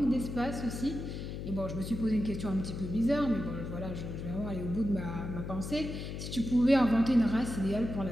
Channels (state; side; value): noise; left; hum, 6 dB below the sound